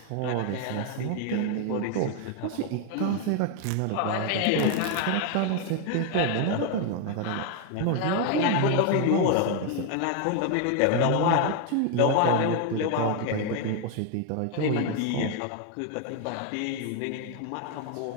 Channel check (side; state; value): both; different; correlation 0.00